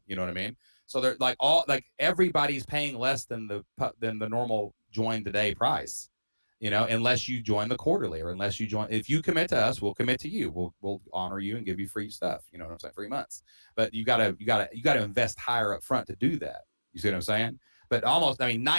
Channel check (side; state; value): both; inverted; correlation -1.00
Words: You know what I mean? So they're everybody's paying less than the normal join today price. Unless you join the quarterly, or unless you join, if you commit to us, we'll commit to you. We'll honor you and give you free stuff. You know what I'm saying? 3 months, but you gotta invest higher up front to do that. You see what I'm saying? But